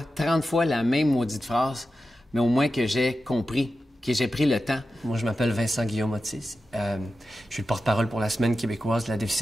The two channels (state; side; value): normal; both; correlation 0.91